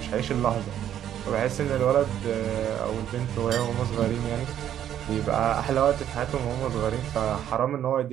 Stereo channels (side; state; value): left; quieter; 10.6 dB